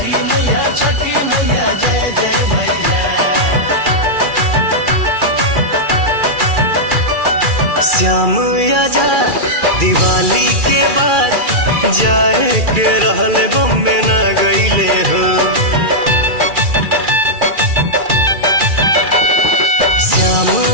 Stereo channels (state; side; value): late; left; 2.4 ms